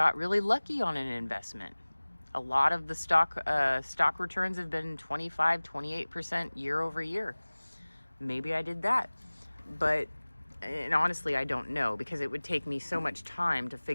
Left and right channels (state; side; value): inverted; both; correlation -1.00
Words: really lucky on an investment. A lot of the stock returns have been 25, 28% year over year. Maybe I did that. And honestly, I don't know, because it would take me so much time to